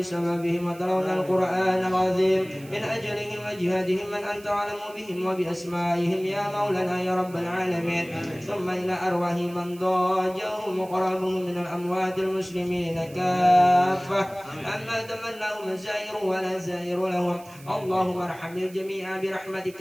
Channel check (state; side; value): noise; right; hiss, 22 dB below the sound